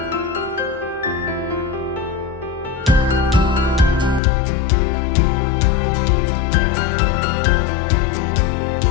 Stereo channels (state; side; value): drops out; right; at 4.2 s